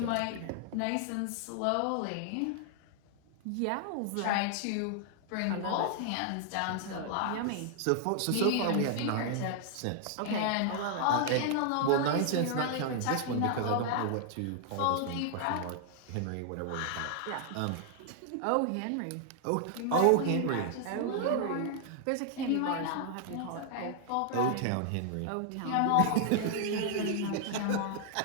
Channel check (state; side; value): different; both; correlation 0.00